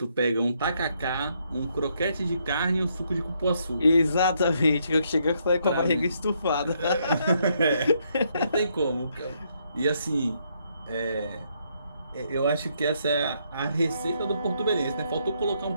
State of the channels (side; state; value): both; inverted; correlation -0.74